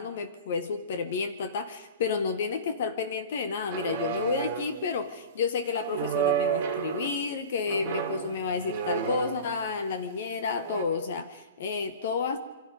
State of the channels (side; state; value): both; inverted; correlation -0.36